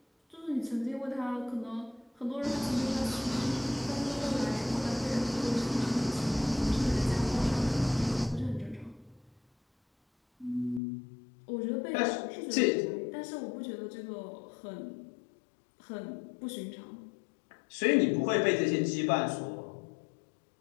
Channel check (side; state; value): right; drops out; at 10.8 s